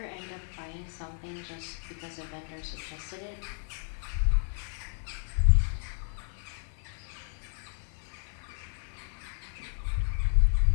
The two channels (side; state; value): right; silent; 56 dB below the other